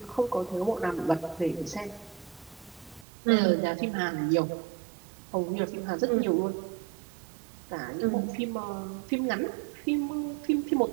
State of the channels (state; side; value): drops out; left; at 3.1 s